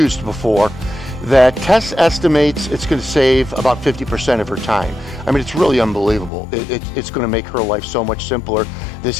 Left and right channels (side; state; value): right; drops out; at 6.3 s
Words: before that Tess estimates it's going to save about 50% of her time. I mean, it's really unbelievable. It's going to make her life so much simpler this